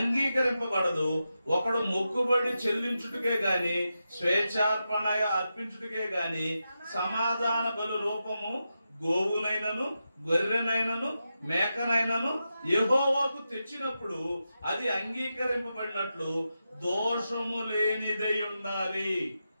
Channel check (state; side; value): inverted; both; correlation -0.89